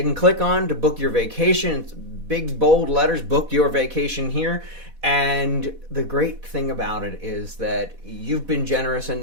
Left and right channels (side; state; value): left; late; 4.1 ms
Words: can click on to book your vacation. It's big, bold letters, book your vacation here. And the great thing about it is that you've been generous